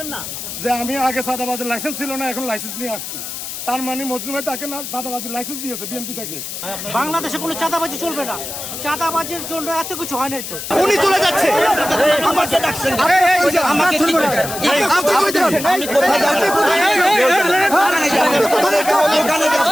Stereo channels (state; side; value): noise; left; hiss, 8 dB below the sound